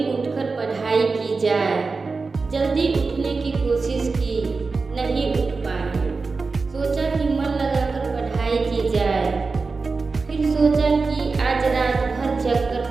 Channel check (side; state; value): left; quieter; 4.2 dB